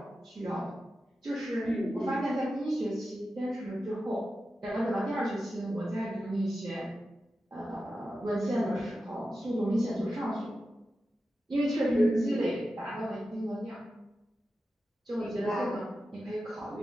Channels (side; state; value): both; normal; correlation 0.91